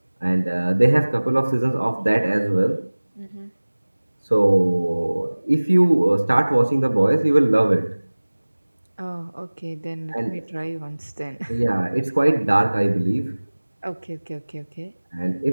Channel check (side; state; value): both; inverted; correlation -1.00